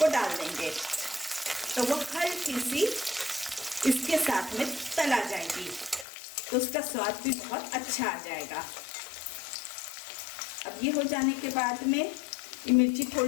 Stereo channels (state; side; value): drops out; right; at 6.1 s